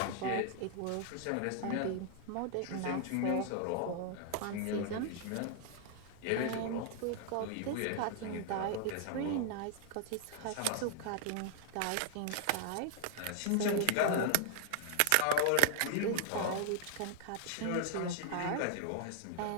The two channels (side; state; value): both; different; correlation 0.00